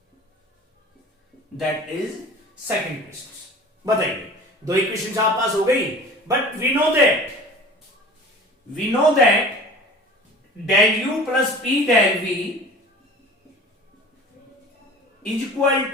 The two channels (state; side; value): normal; both; correlation 0.42